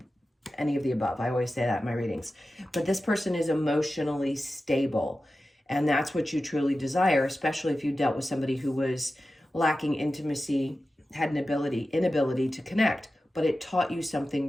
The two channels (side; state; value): both; normal; correlation 0.93